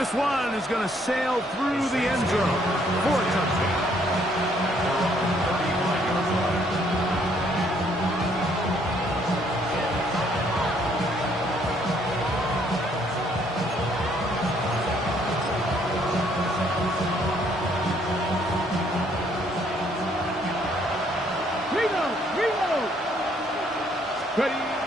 one is going to sail through the end zone for a touchdown. Ready.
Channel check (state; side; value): normal; both; correlation 0.66